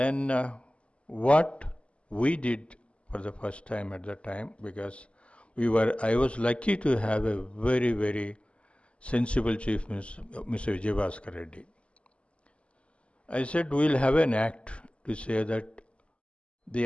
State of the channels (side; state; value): right; late; 0.057 ms